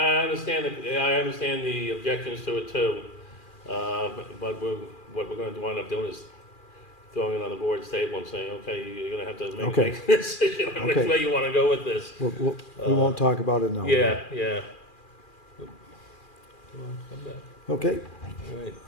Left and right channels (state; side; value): late; right; 2.4 ms